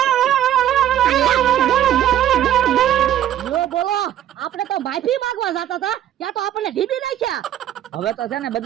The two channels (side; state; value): left; quieter; 11.6 dB